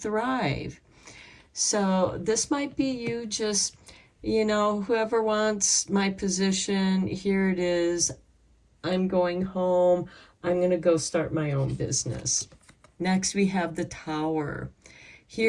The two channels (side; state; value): both; identical; correlation 1.00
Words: So this might be you just, you know, whoever wants my position, here it is. I'm going home. I'm going to go start my own business. Next, we have the Tower.